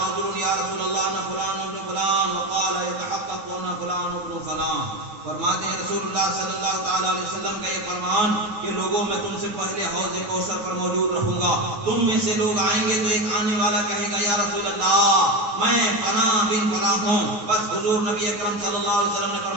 یا رسول اللہ انا فلان ابن فلان وقال يتحقق انا فلان ابن فلان، فرماتے ہیں رسول اللہ صلی اللہ تعالی علیہ وسلم کا یہ فرمان کہ لوگوں میں تم سے پہلے حوض کوثر پر موجود رہوں گا، تم میں سے لوگ آئیں گے تو ایک آنے والا کہے گا یا رسول اللہ میں فلاں بن فلاں ہوں، بس حضور نبی اکرم صلی اللہ علیہ وسلم نے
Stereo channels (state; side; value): late; left; 9.2 ms